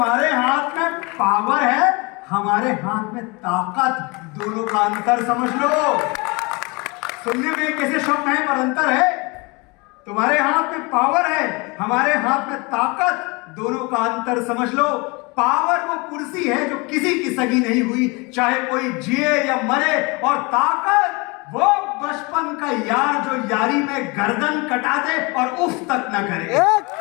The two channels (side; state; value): right; quieter; 27.5 dB